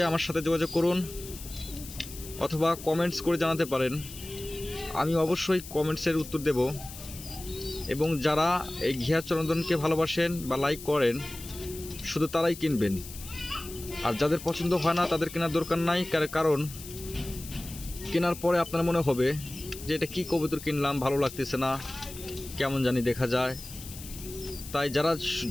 আমার সাথে যোগাযোগ করুন, অথবা কমেন্টস করে জানাতে পারেন। আমি অবশ্যই কমেন্টসের উত্তর দেব। এবং যারা এই ঘিয়াচরন্দনকে ভালোবাসেন বা লাইক করেন শুধু তারাই কিনবেন, আর যাদের পছন্দ হয় না তাদের কেনার দরকার নাই। কারণ কেনার পরে আপনার মনে হবে যে এটা কি কবুতর কিনলাম, ভালো লাগতেছে না, কেমন জানি দেখা যায়। তাই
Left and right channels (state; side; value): noise; left; hiss, 14 dB below the sound